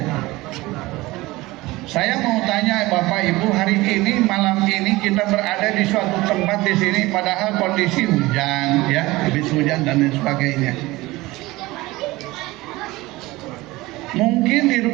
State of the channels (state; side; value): quieter; left; 20.1 dB